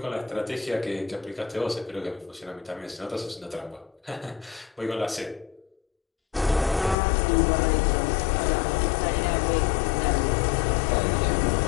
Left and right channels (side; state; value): right; drops out; at 7.0 s